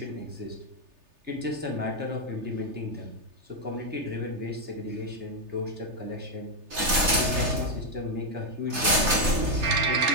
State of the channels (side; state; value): left; late; 3.3 ms